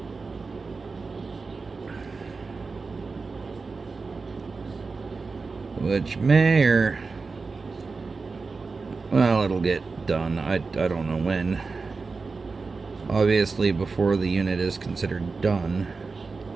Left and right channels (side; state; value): left; quieter; 4.3 dB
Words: Which may or... well, it'll get done. I don't know when. Obviously, before the unit is considered done.